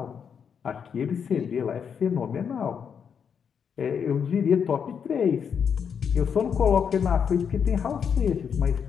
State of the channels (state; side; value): quieter; right; 7.1 dB